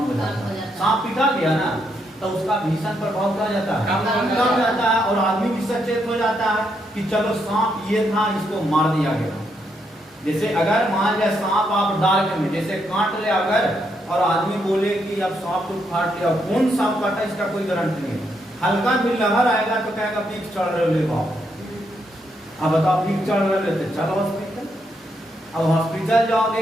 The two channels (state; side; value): normal; both; correlation 0.78